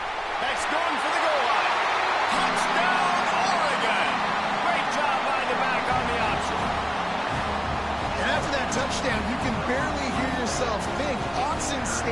That's going for the goal line. Touchdown, Oregon. Great job by the back on the option. And after that touchdown, you can barely hear yourself think. Autzen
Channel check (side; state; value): both; identical; correlation 1.00